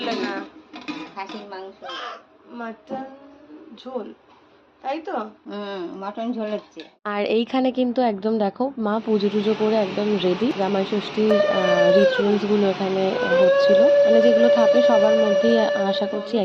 না। খাসির মাংস, মাটন ঝোল, তাই তো? মটন ঝোল হচ্ছে। আর এইখানে কিন্তু একদম দেখো মা পুজো টুজো করে একদম রেডি। জামাই ষষ্ঠীর রিচুয়ালস গুলো এখানে হচ্ছিল, মানে যেগুলো থাকে সবার মধ্যেই আশা করছি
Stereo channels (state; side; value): identical; both; correlation 1.00